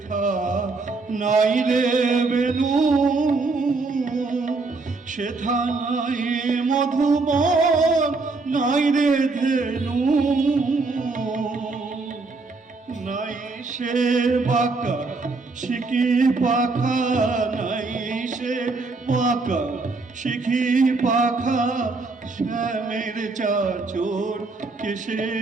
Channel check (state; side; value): quieter; left; 3.8 dB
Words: নাই রে বেনু, সেথা নাই মধুবন, নাই রে ধেনু। নাই সে বাঁকা শিখি পাখা, নাই সে বাঁকা শিখি পাখা, শ্যামের চাচোর কেশে,